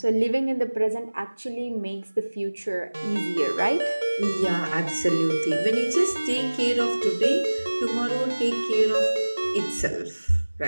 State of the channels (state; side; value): inverted; both; correlation -1.00